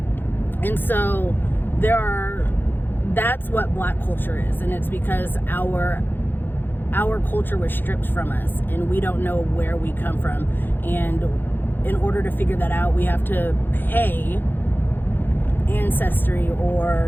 And so that's what black culture is, and it's because our culture was stripped from us, and we don't know where we come from, and in order to figure that out, we have to pay Ancestry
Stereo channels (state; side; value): late; right; 0.097 ms